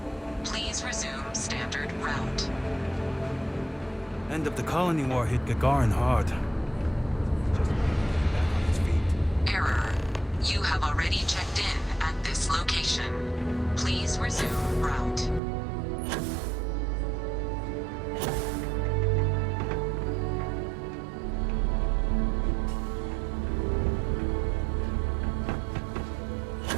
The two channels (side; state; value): left; drops out; at 15.4 s